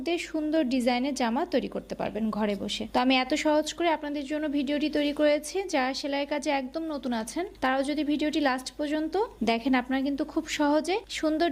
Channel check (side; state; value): both; identical; correlation 1.00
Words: দিয়ে সুন্দর ডিজাইনের জামা তৈরি করতে পারবেন ঘরে বসে। তো আমি এত সহজ করে আপনাদের জন্য ভিডিওটি তৈরি করেছি। যারা সেলাই কাজে একদম নতুন আছেন তারাও যদি ভিডিওটি লাস্ট পর্যন্ত দেখেন, আপনারা কিন্তু খুব সহজে সুন্দর